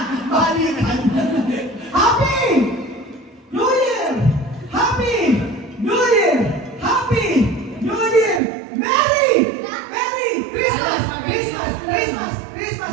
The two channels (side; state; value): left; drops out; at 8.4 s